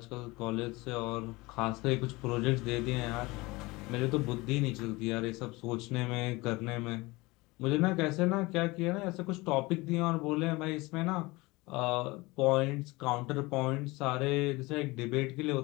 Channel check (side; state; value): right; quieter; 22.7 dB